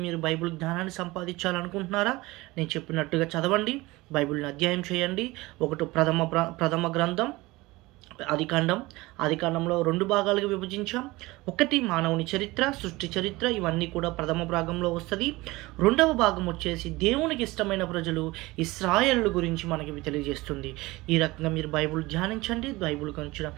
మీరు బైబిల్ జ్ఞానాన్ని సంపాదించాలనుకుంటున్నారా, నేను చెప్పినట్టుగా చదవండి, బైబిల్ని అధ్యయనం చేయండి. ఒకటి ప్రథమ గ్రంథం ఆదికాండంలో 2 భాగాలుగా విభజించాం. 1 మానవుని చరిత్ర, సృష్టి చరిత్ర, ఇవన్నీ కూడా ప్రథమ భాగంలో వస్తుంది. 2వ భాగం వచ్చేసి దేవునికి ఇష్టమైన ప్రజలు ఇశ్రాయేలు గురించి మనకి తెలియజేస్తుంది. ఈ రకంగా మీరు బైబిల్ ధ్యానించండి. బైబిల్ గురించి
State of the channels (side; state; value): left; quieter; 20.9 dB